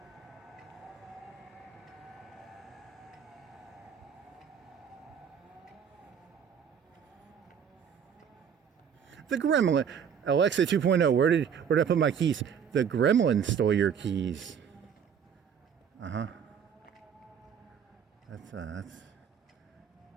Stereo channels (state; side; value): quieter; left; 7.7 dB